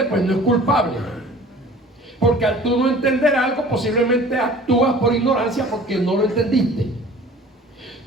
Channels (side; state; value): both; normal; correlation 0.47